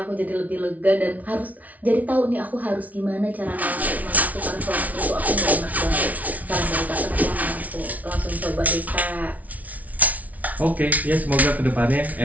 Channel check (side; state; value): left; late; 0.072 ms